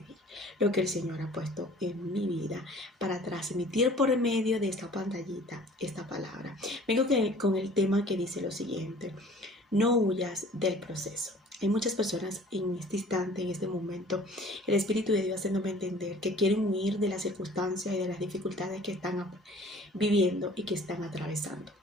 lo que el Señor ha puesto en mi vida, para transmitir por medio de esta pantallita esta palabra. Vengo con el tema que dice lo siguiente: no huyas del proceso. Hay muchas personas en este instante, en este momento, el Espíritu de Dios haciéndome entender que quieren huir de las circunstancias y de las dificultades que están viviendo y que están atravesando.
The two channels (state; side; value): normal; both; correlation 0.49